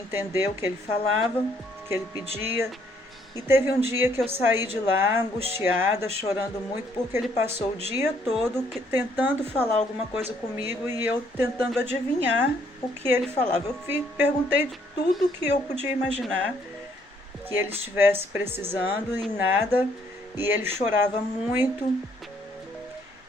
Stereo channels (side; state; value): both; normal; correlation 0.67